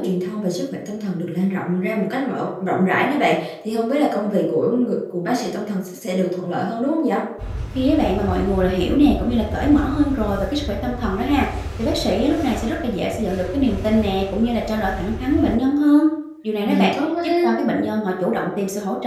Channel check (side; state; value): both; identical; correlation 1.00